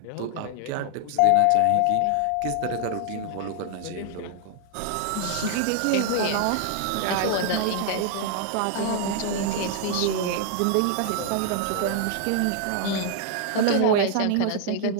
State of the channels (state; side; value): different; both; correlation 0.00